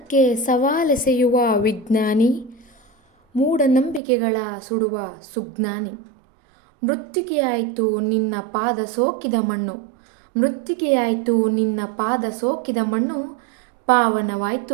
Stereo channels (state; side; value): drops out; left; at 4.0 s